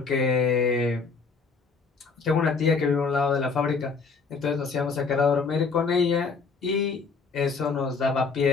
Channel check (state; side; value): quieter; right; 4.8 dB